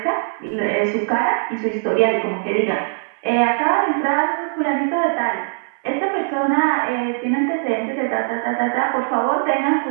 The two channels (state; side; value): silent; left; 62 dB below the other